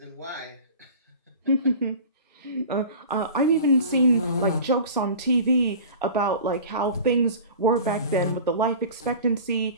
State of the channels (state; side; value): inverted; both; correlation -0.39